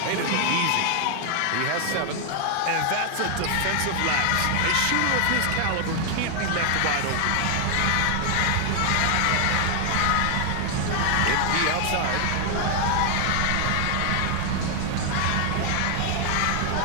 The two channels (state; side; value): different; both; correlation 0.00